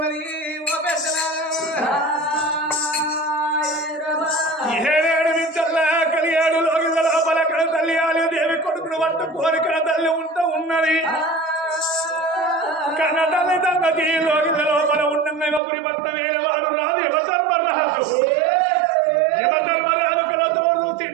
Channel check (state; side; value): drops out; left; at 15.6 s